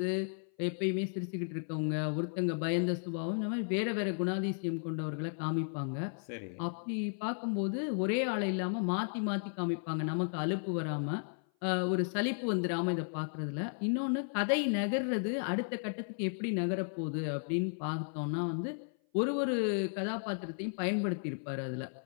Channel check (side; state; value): right; silent; 55 dB below the other